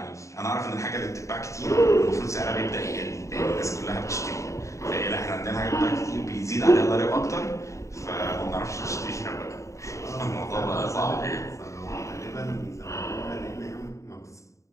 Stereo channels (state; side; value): late; right; 0.15 ms